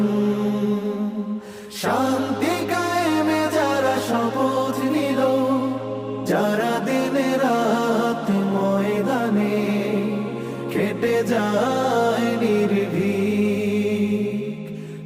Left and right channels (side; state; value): both; identical; correlation 1.00